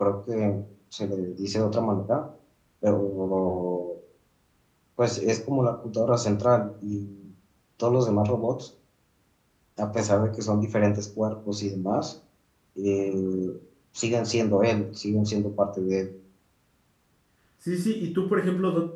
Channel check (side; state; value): both; identical; correlation 1.00